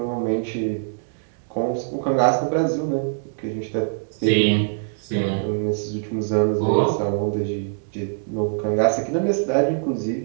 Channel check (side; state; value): left; silent; digital silence